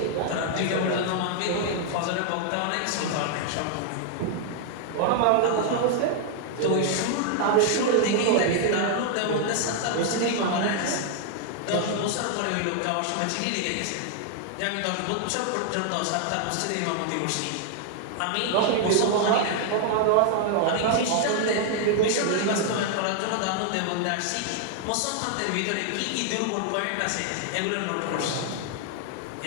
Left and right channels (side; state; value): both; different; correlation 0.00